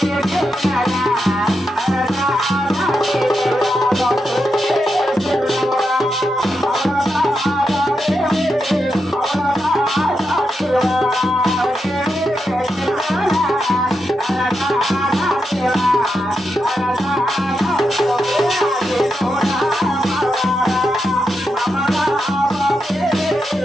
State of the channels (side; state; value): both; normal; correlation 0.86